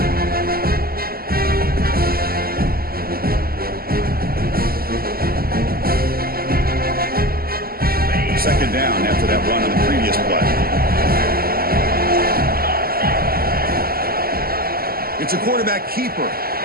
Second down after that run on the previous play. It's a quarterback keeper.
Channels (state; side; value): late; left; 0.43 ms